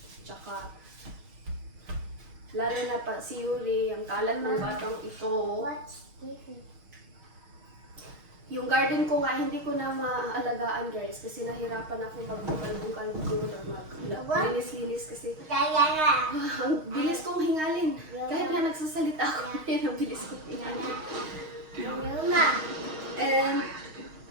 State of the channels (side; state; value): left; late; 6.4 ms